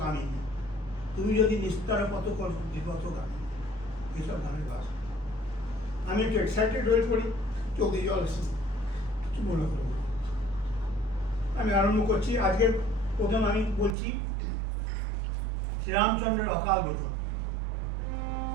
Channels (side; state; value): left; drops out; at 14.0 s